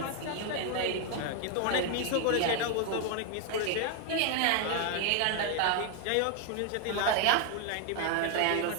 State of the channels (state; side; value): different; both; correlation 0.01